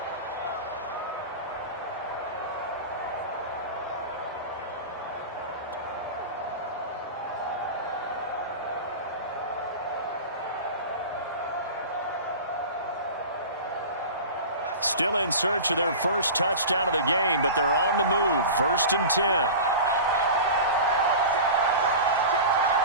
Still in search of their first touchdown of the game, but they're on the move. 1st and 10.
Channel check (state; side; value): inverted; both; correlation -0.32